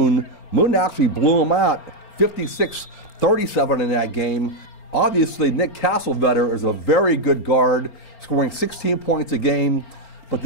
Moon actually blew them out 56-37 in that game. Obviously, Nick Castlevetter is a very good guard, scoring 16 points a game. But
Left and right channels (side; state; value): right; late; 4.4 ms